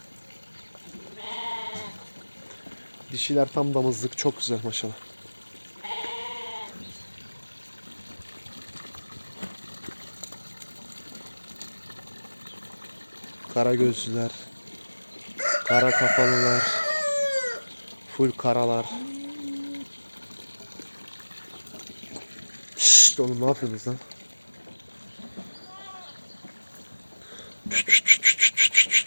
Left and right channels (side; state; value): both; inverted; correlation -1.00